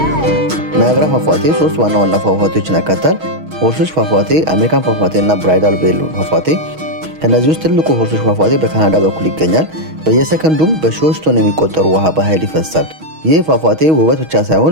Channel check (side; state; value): left; late; 6.3 ms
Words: ናያግራ ፏፏቴ ሶስት ዋና ዋና ፏፏቴዎችን ያካትታል። ሆርሶች ፏፏቴ፣ አሜሪካን ፏፏቴ እና ብራይዳል ቬል ፏፏቴ። ከነዚህ ውስጥ ትልቁ ሆርሶች ፏፏቴ በካናዳ በኩል ይገኛል። በየሰከንዱም በሺዎች ቶን የሚቆጠሩ ውሃ በኃይል ይፈሳል። ይህ ፏፏቴ ውበት ብቻ